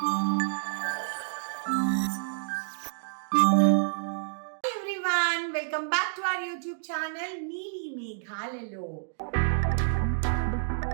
Everyone, welcome back to our YouTube channel నీలి మేఘాలలో.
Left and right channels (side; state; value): left; silent; digital silence